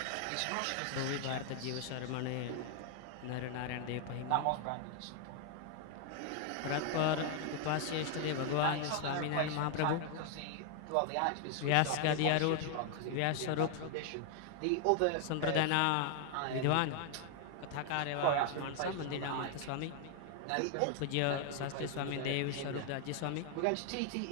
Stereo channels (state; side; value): different; both; correlation 0.00